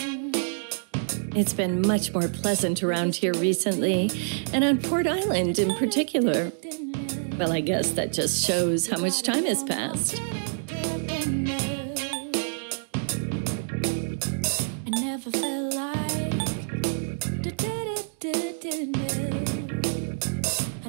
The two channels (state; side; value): silent; left; digital silence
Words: It's been much more pleasant around here recently, and on Port Island in particular. Well, I guess that just shows how much time has passed. I never felt like I